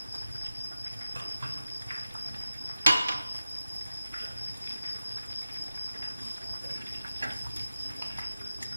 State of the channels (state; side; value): inverted; both; correlation -0.93